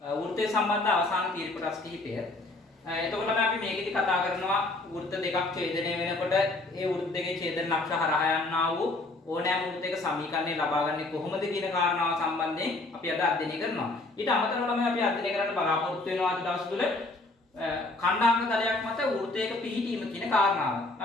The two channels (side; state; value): right; quieter; 3.0 dB